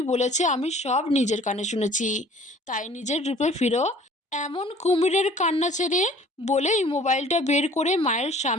বলেছে আমি সব নিজের কানে শুনেছি। তাই নিজের রূপে ফিরো। এমন কুমিরের কান্না ছেড়ে। বলেই মোবাইলটা বের করে মায়ের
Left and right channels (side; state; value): both; normal; correlation 0.51